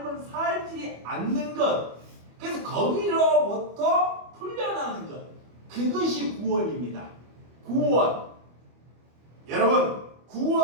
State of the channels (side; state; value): left; late; 25 ms